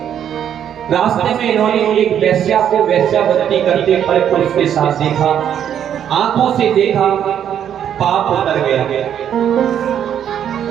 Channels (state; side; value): quieter; left; 9.4 dB